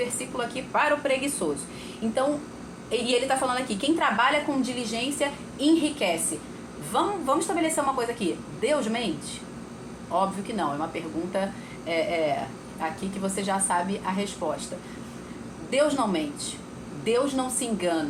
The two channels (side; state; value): both; identical; correlation 1.00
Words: aqui para o preguiçoso. Então, e ele está falando aqui, quem trabalha com diligência enriquece. Vamos estabelecer uma coisa aqui. Deus mente? Óbvio que não, é uma pergunta aqui que você já sabe a resposta. Deus não mente, Deus não se